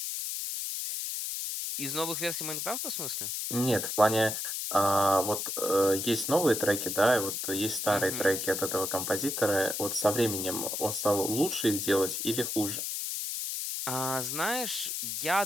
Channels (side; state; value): left; noise; hiss, 3 dB below the sound